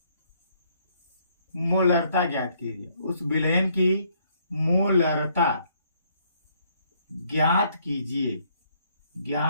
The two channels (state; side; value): inverted; both; correlation -0.68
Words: मोलरता ज्ञात कीजिए। उस विलयन की मोलरता ज्ञात